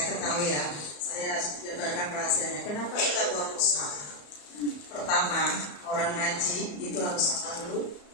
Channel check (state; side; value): late; right; 34 ms